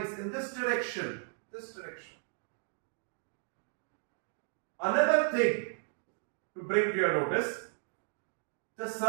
in this direction. Another thing to bring to your notice, the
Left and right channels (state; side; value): silent; left; digital silence